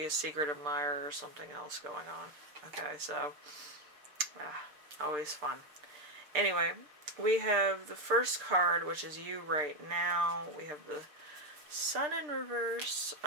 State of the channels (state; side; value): late; left; 6.7 ms